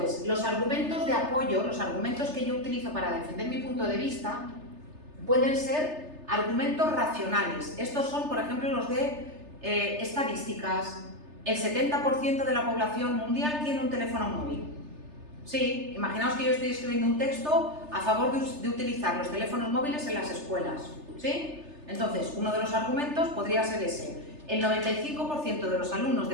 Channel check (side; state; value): left; late; 3.3 ms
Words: los argumentos de apoyo, los argumentos que yo utilizo para defender mi punto de vista, pueden ser argumentos racionales. Estos son, por ejemplo, los de estadísticas. El 70% de la población mundial tiene un teléfono móvil. Sí, imaginaos que yo estoy escribiendo un texto a favor de utilizar los teléfonos móviles en las escuelas, ¿sí? Entonces, uno de los argumentos podría ser ese. El 95% de los alumnos